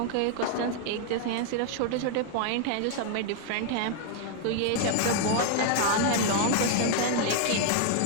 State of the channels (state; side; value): different; both; correlation 0.00